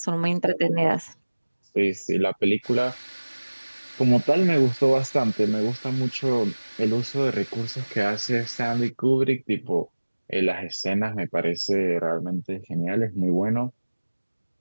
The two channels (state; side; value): inverted; both; correlation -1.00